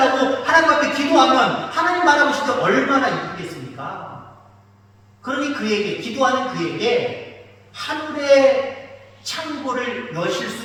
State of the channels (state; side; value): identical; both; correlation 1.00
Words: 하나님 앞에 기도하면 하나님 바라보실 때 얼마나 이쁘겠습니까? 그러니 그에게 기도하는 그에게 하늘의 창고를 여실